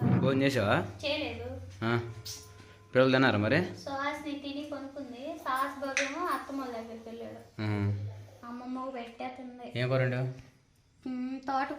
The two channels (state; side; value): identical; both; correlation 1.00